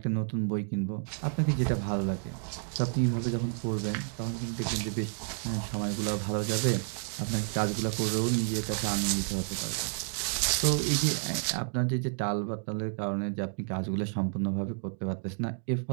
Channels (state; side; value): silent; left; 57 dB below the other